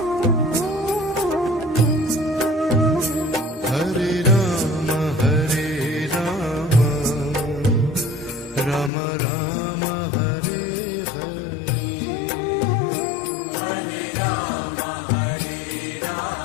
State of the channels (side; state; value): right; drops out; at 8.9 s